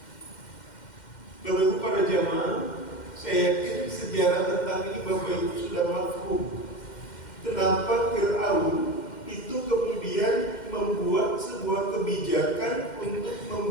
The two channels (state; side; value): late; right; 2.1 ms